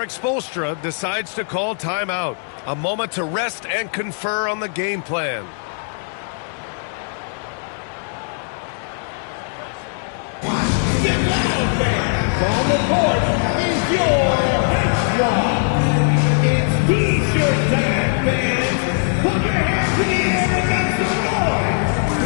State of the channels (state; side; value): silent; right; 65 dB below the other